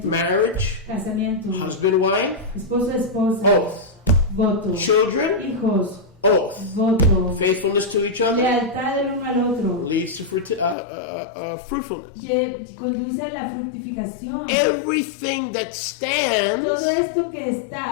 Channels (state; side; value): drops out; right; at 10.8 s